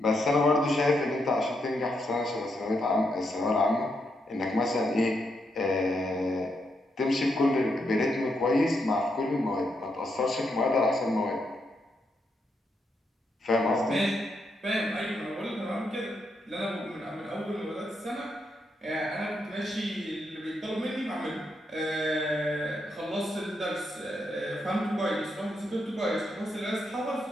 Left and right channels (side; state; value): both; normal; correlation 0.80